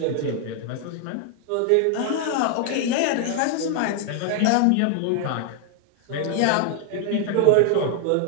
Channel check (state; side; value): different; both; correlation 0.00